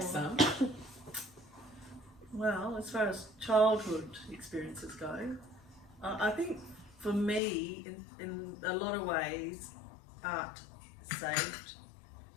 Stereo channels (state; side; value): drops out; right; at 7.4 s